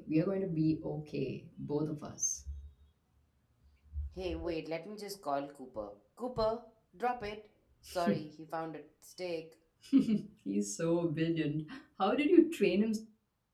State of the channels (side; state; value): both; identical; correlation 1.00